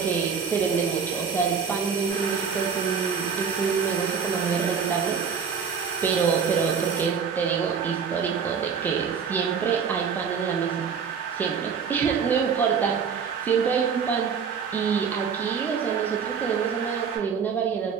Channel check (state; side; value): quieter; left; 6.5 dB